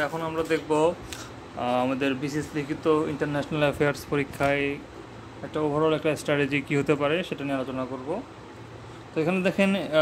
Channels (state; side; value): identical; both; correlation 1.00